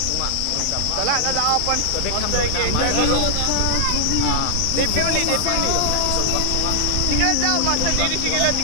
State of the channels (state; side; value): different; both; correlation -0.01